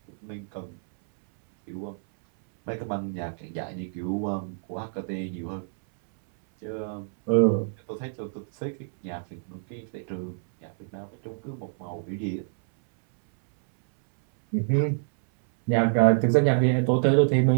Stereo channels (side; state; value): left; silent; 60 dB below the other